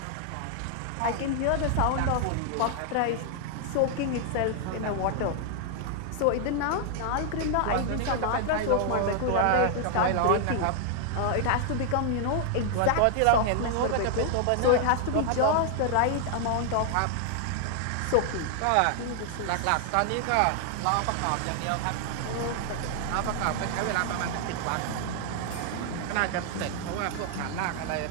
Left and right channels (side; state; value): both; different; correlation 0.00